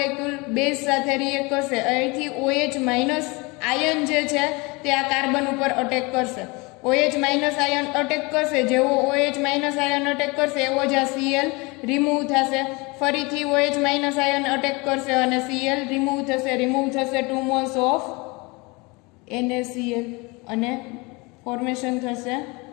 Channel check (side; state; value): right; quieter; 26.4 dB